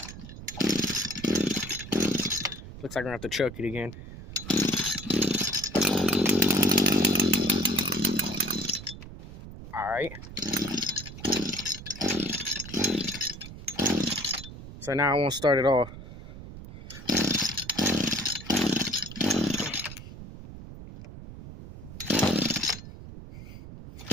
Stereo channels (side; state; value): right; noise; rumble, 13 dB below the sound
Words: Looks like I'm gonna have to choke it again. All right. So now I won't start it off.